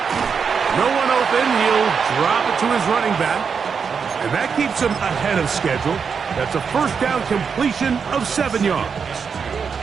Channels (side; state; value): left; quieter; 6.1 dB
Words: No one open. He'll drop it to his running back. And that keeps him ahead of schedule. That's a first down completion of 7 yards.